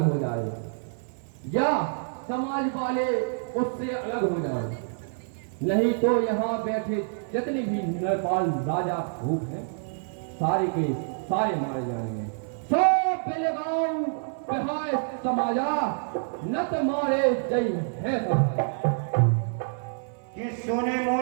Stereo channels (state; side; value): silent; left; 60 dB below the other